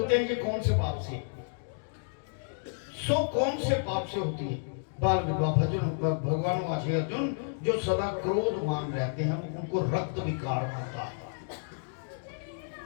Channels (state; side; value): silent; right; digital silence